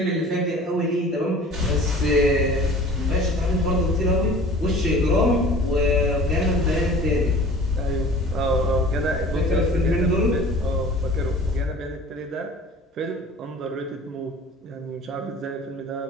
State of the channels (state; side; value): normal; both; correlation 0.45